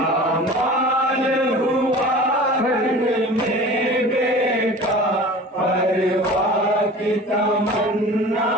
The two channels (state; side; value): normal; both; correlation 0.39